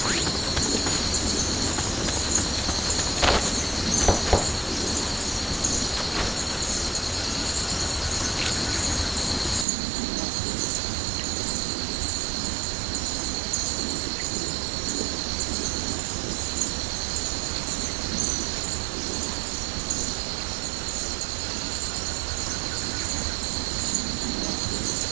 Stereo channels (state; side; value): drops out; left; at 9.7 s